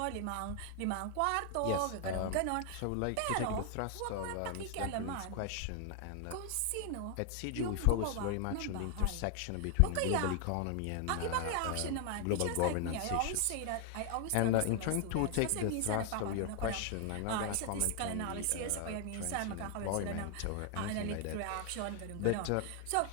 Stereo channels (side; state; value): both; different; correlation 0.00